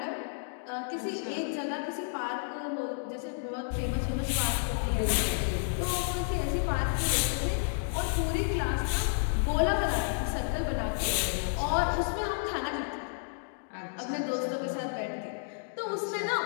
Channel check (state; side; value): silent; right; digital silence